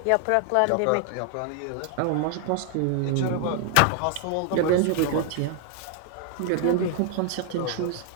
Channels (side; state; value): both; different; correlation 0.00